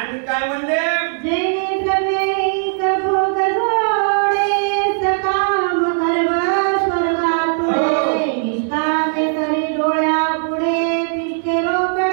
काय म्हणले, जेणे प्रवेश भोग जोडे, सकाम गर्भ स्वर्गातुळे, निष्कामे करे डोळ्या पुढे, तिष्ठे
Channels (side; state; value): left; silent; 66 dB below the other